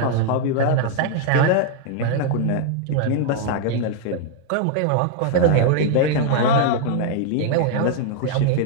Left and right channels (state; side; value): different; both; correlation 0.00